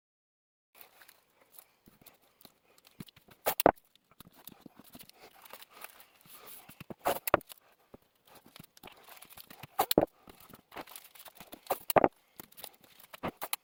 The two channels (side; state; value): both; identical; correlation 1.00